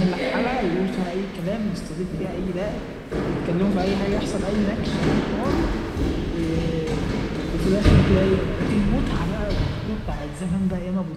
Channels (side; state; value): both; identical; correlation 1.00